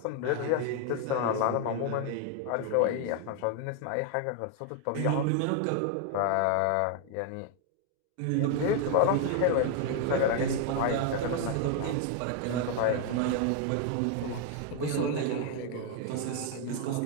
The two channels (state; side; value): different; both; correlation 0.00